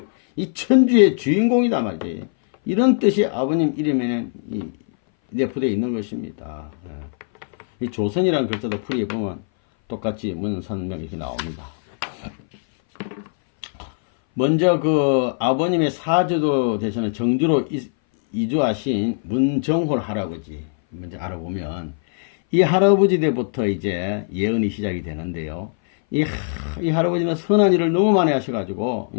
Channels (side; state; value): right; silent; 60 dB below the other